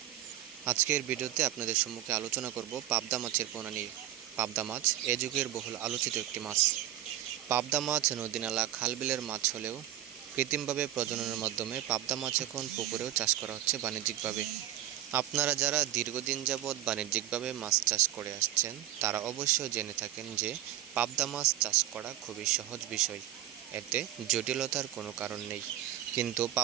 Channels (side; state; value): left; quieter; 13.4 dB